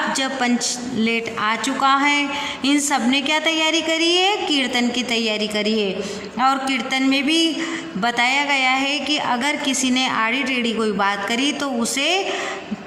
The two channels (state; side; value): identical; both; correlation 1.00